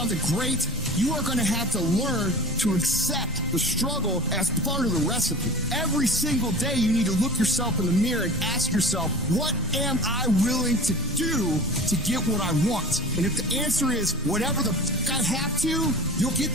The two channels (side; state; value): both; normal; correlation 0.38